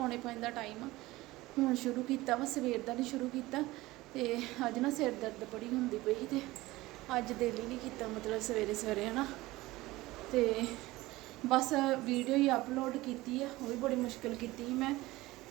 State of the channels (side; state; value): left; quieter; 19.0 dB